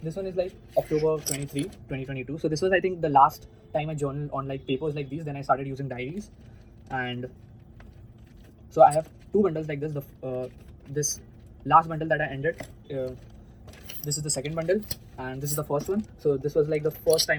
one is like October 23, 2022. So this was, I think, the last time I journaled on like papers like these. Then I started using diaries. And so I have two bundles like this. This last bundle that I ended, this is the second bundle. and this is the first one. So this was like the first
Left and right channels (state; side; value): identical; both; correlation 1.00